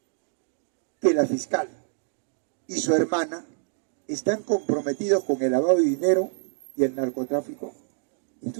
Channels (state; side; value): silent; left; 60 dB below the other